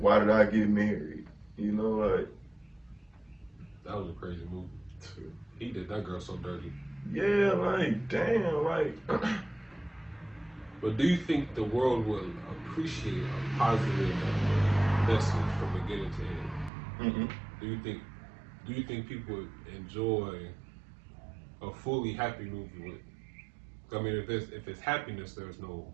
did I get married? You know, like That was a crazy movie. He did that girl so dirty. yeah, like damn, like. But do you think the world will appreciate a positive message from beginning to end? Mm-mm. Do you think people enjoy a fully happy movie with. I mean, if it's happiness, there's no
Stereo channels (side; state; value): left; drops out; at 16.7 s